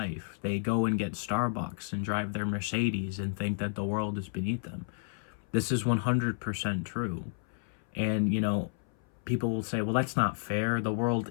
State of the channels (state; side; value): silent; right; 57 dB below the other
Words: They go and get Starbucks and drive their Mercedes and think that the world is beneath them. This is 100% true. And, people will say, well, that's not fair. The